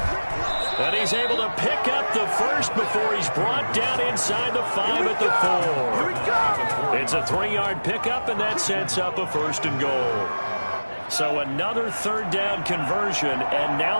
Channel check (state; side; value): inverted; both; correlation -1.00